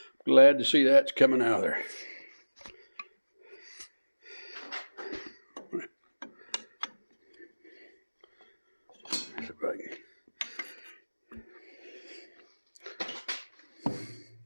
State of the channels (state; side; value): inverted; both; correlation -1.00